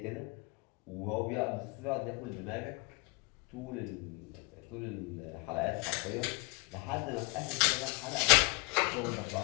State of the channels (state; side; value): quieter; right; 29.1 dB